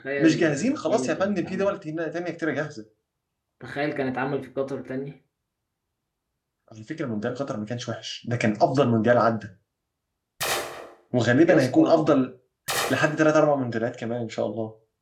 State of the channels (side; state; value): both; identical; correlation 1.00